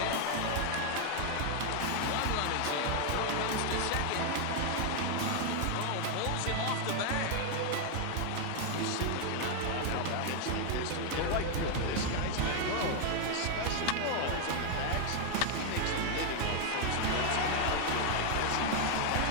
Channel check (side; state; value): both; different; correlation 0.00